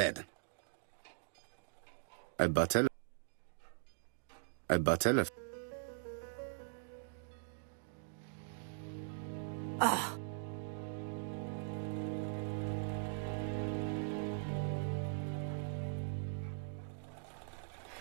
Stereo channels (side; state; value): left; silent; digital silence